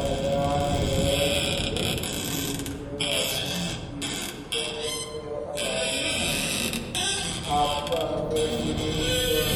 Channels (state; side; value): identical; both; correlation 1.00